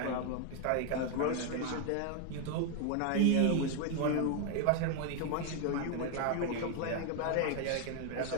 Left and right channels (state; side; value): different; both; correlation 0.00